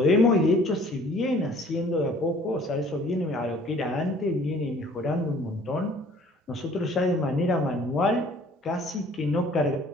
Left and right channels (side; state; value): both; normal; correlation 0.54